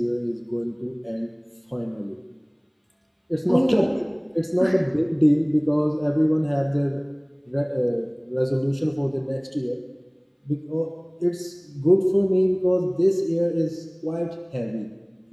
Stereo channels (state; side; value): identical; both; correlation 1.00